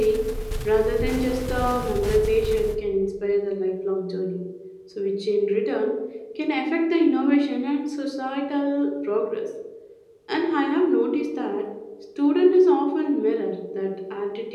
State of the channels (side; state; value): both; identical; correlation 1.00